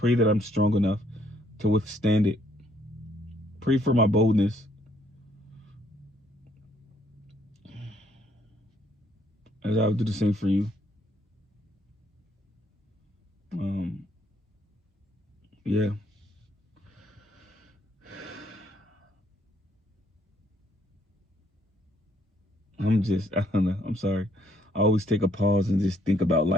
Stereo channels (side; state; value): both; normal; correlation 0.68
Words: that I'm strong enough to withstand it. Pray for my boldness. As I would do the same for you. Yeah. I don't know. I'm sorry. I always take a pause and just think about